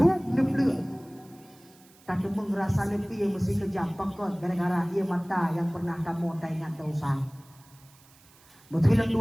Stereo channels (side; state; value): right; noise; hiss, 27 dB below the sound